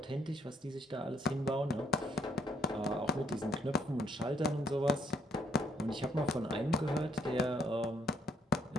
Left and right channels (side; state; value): both; normal; correlation 0.70